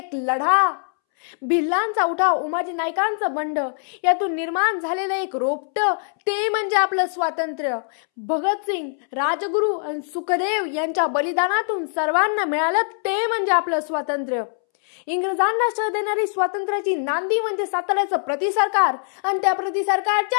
लढा। भिल्लांचा उठाव, उमाजी नायकांचं बंड, यातून निर्माण झालेलं एक रोपटं ते म्हणजे आपलं स्वातंत्र्य। भगतसिंग, राजगुरू आणि सुखदेव यांच्या बलिदानातून सर्वांना मिळालं ते म्हणजे आपलं स्वातंत्र्य। इंग्रजांना शह देणारी स्वातंत्र्याची नांदी म्हणजे साताऱ्याचं प्रतिसरकार आणि त्या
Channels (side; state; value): right; silent; 63 dB below the other